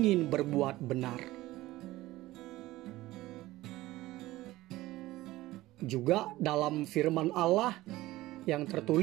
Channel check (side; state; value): left; quieter; 17.5 dB